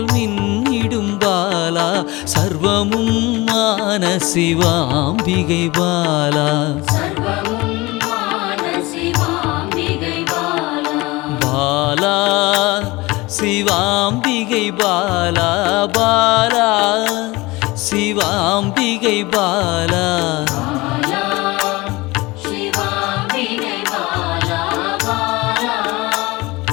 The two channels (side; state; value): right; quieter; 22.0 dB